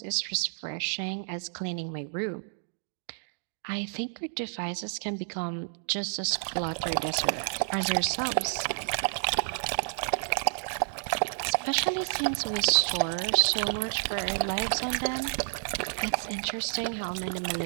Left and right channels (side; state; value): left; silent; digital silence